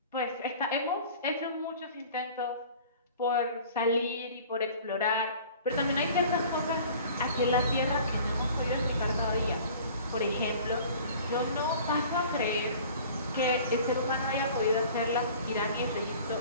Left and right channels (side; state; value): both; inverted; correlation -0.46